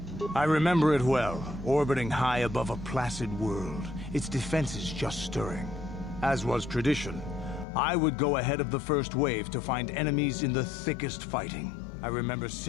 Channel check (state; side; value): drops out; right; at 7.7 s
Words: I remember it well, orbiting high above a placid world, its defenses just stirring. As was tradition, I would go ahead of the first wave to find enemies in the thickest fighting. I remember